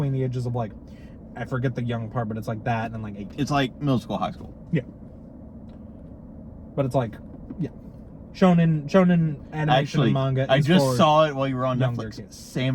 the ages of like, I forget the young part, but it's like that and like 18. It's like middle school, high school. Yeah. But it's like, yeah. Shonen animation Actually, and manga I is just for saw it while you were on younger Netflix. kids.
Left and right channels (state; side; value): identical; both; correlation 1.00